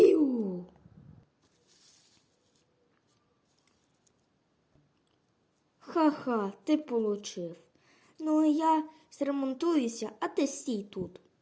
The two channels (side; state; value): both; identical; correlation 1.00